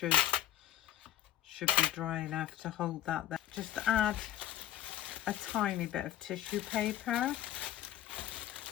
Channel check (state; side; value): quieter; right; 12.8 dB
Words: be dry enough to hold that there. Just add a tiny bit of tissue paper.